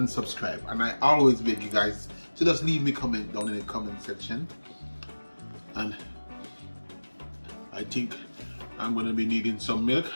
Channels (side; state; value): both; inverted; correlation -1.00